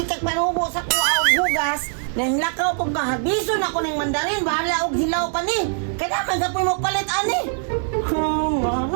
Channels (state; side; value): silent; left; 57 dB below the other